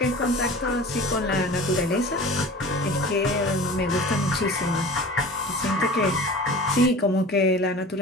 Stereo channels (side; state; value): both; normal; correlation 0.39